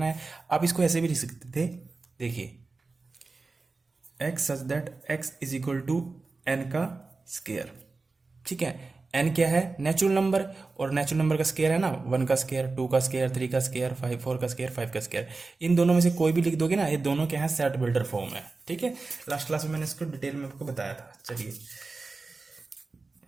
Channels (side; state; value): left; quieter; 3.8 dB